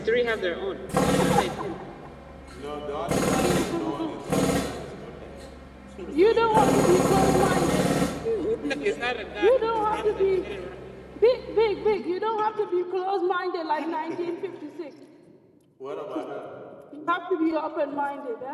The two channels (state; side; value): identical; both; correlation 1.00